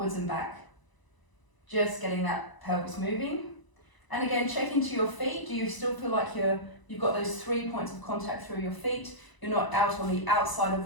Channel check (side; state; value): right; late; 1.0 ms